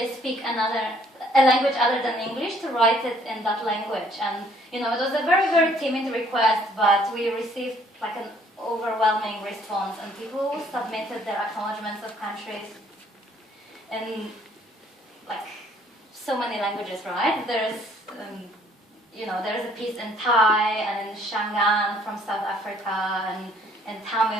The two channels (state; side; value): normal; both; correlation 0.62